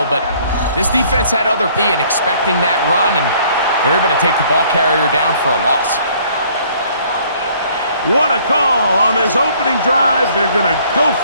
But this defense had other P and expecting that run, and they're able to take the ball carrier down for a loss. What a call on this opening drive. They're going to go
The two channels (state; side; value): inverted; both; correlation -0.59